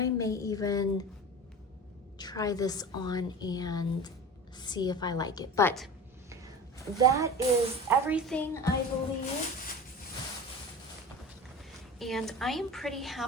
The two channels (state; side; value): normal; both; correlation 0.33